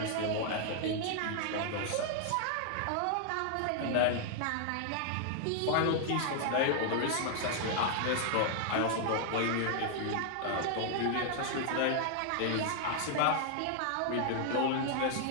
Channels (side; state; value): both; different; correlation 0.00